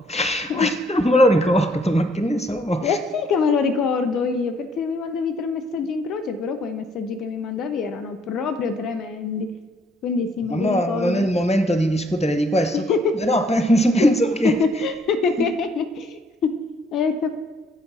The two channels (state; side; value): normal; both; correlation 0.65